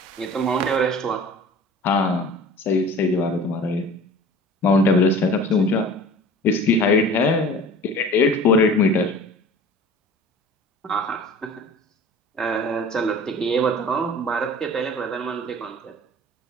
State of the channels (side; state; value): both; normal; correlation 0.42